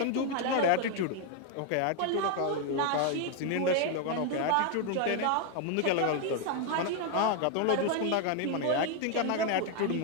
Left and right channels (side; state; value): both; different; correlation 0.01